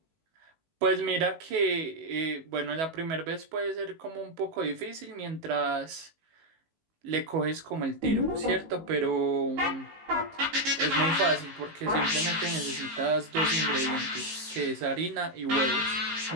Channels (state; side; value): late; left; 19 ms